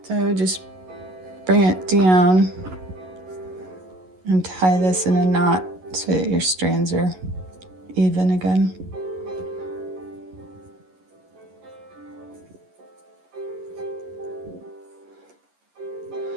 So just bring it down and tie this in a knot so that your strands are even again.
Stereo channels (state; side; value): late; left; 11 ms